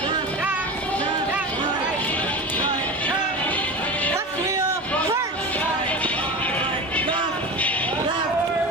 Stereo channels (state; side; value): normal; both; correlation 0.28